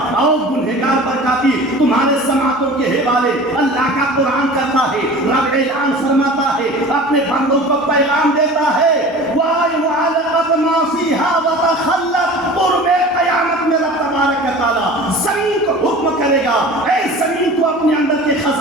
آؤ گنہگار برکاتی تمہارے سماعتوں کے حوالے اللہ کا قرآن کرتا ہے، رب اعلان فرماتا ہے، اپنے بندوں کو پیغام دیتا ہے، وَأَيْ وَعَلَقَتْ مَا فِيهَا وَتَخَلَّتْ قرب قیامت میں رب تبارک و تعالیٰ زمین کو حکم کرے گا، اے زمین تو اپنے اندر کے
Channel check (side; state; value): both; normal; correlation 0.39